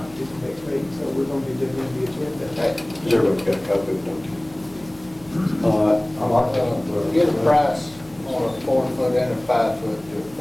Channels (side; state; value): left; noise; hum, 25 dB below the sound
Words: it for next week, so we're gonna be doing the agenda. Everybody's got a copy of it. I like that. Get a price on a 4 foot and a 5 foot